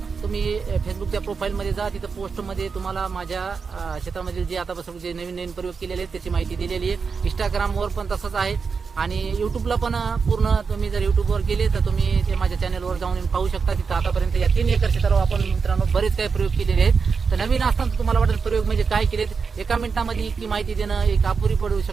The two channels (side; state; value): left; quieter; 5.3 dB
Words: तुम्ही फेसबुकच्या प्रोफाईलमध्ये जा, तिथं पोस्टमध्ये तुम्हाला माझ्या शेतामधील जे आतापासून जे नवीन प्रयोग केलेले आहेत त्याची माहिती दिलेली आहे. इंस्टाग्रामवर पण तसंच आहे आणि युट्यूबला पण पूर्ण. तुम्ही जर युट्यूबवर गेले तर तुम्ही ते माझ्या चॅनलवर जाऊन पाहू शकता. तिथं आतापर्यंत या 3 एकर क्षेत्रावर आपण मित्रांनो बरेच काही प्रयोग केलेले आहेत. तर नवीन असताना तुम्हाला वाटेल प्रयोग म्हणजे काय केलेत, एका मिनिटामध्ये इतकी माहिती देणं एक अपुरी पडू